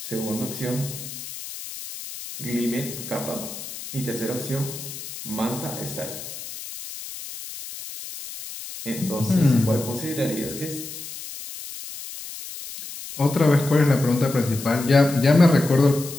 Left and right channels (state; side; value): noise; left; hiss, 11 dB below the sound